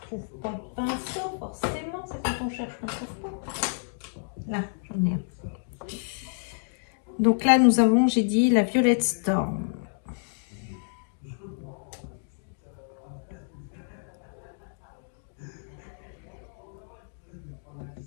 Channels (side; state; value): right; silent; digital silence